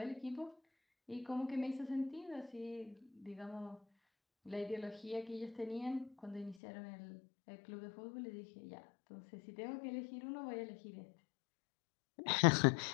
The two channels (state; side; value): drops out; right; at 6.6 s